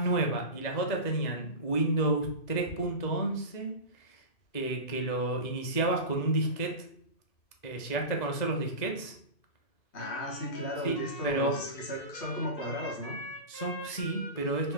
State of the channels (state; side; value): late; right; 2.0 ms